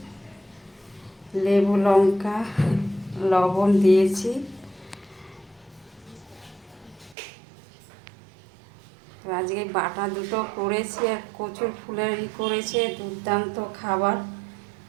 লেবু লঙ্কা লবণ দিয়েছি। আজকে বাটা দুটো করেছি আর কচুর ফুলের করেছে, দুর্দান্ত খাবার।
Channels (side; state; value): left; drops out; at 7.2 s